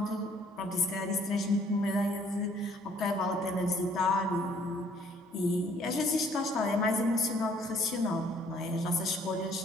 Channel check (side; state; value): both; normal; correlation 0.61